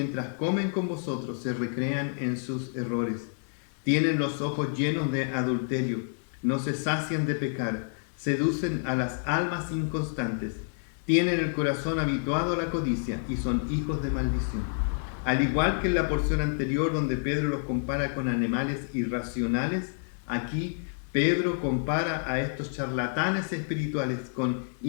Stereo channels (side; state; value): right; silent; digital silence